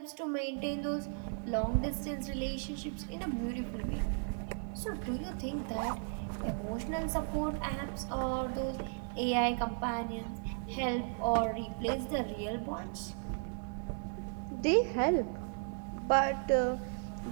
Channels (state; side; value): silent; left; 54 dB below the other